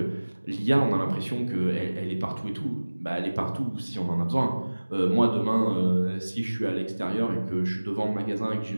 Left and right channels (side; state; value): both; inverted; correlation -1.00